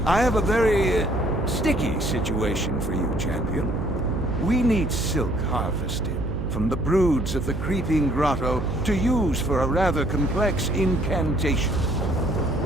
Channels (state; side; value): noise; right; hum, 4 dB below the sound